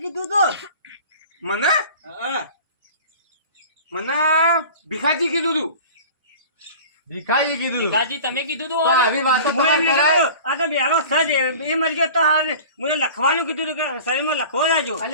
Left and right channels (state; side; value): inverted; both; correlation -0.40